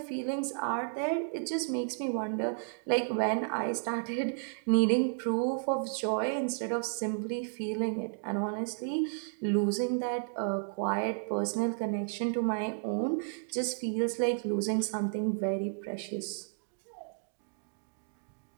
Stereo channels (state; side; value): silent; left; digital silence